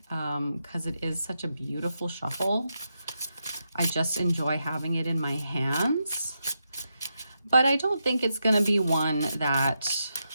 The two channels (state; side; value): inverted; both; correlation -0.85